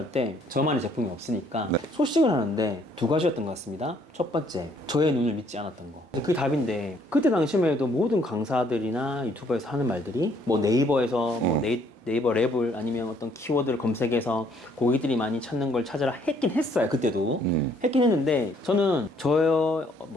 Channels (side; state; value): both; normal; correlation 0.65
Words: 때 저만의 제품이 없으니까 소싱을 하는데 두 가지였던 것 같습니다. 첫 번째, 저의 눈을 믿지 않았던 거. 그게 답인데, 그때 당시만 해도 모든 강사들이나 유튜버에서 하는 말들이 뭐 네이버에서 뭐 네이버 랩을 아니면 어떤 키워드를 검색해서 고객들이 많이 찾는 걸 찾아라 했긴 했어요. 그때도 했긴 했는데, 저는